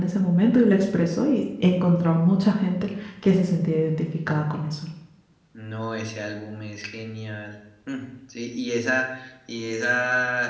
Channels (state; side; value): identical; both; correlation 1.00